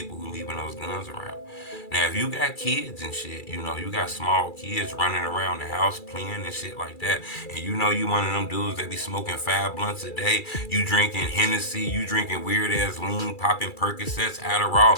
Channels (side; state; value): right; late; 2.3 ms